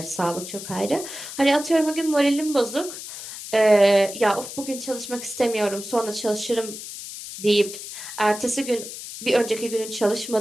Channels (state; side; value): noise; left; hiss, 10 dB below the sound